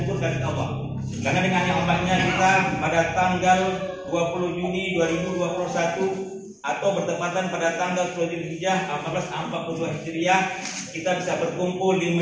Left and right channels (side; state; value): both; identical; correlation 1.00